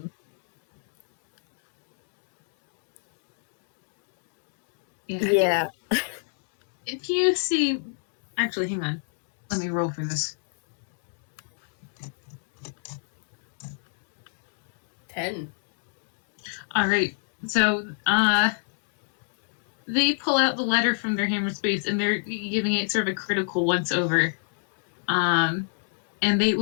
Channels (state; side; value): silent; right; digital silence